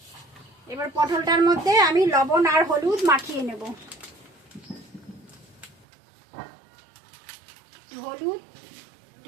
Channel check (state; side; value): drops out; left; at 5.9 s